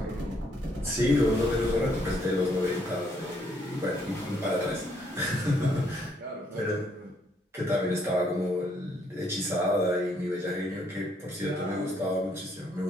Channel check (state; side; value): normal; both; correlation 0.70